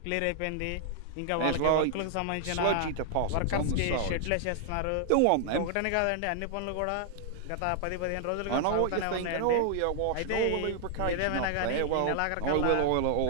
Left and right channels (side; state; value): both; different; correlation 0.00